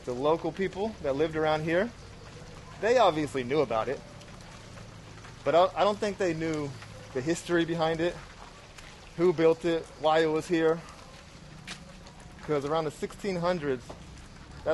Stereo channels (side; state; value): both; identical; correlation 1.00